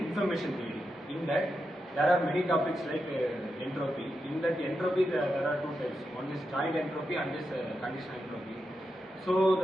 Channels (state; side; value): normal; both; correlation 0.87